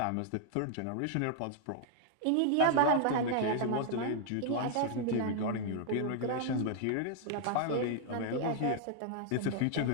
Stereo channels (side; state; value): both; different; correlation 0.00